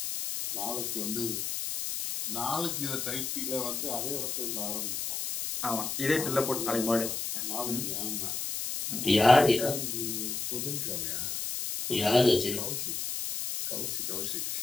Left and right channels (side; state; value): left; noise; hiss, 3 dB below the sound